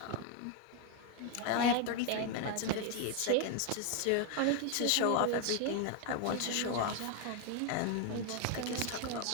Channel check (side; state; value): both; different; correlation 0.01